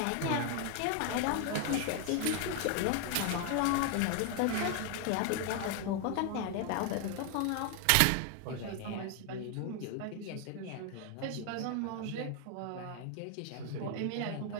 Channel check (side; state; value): both; different; correlation 0.01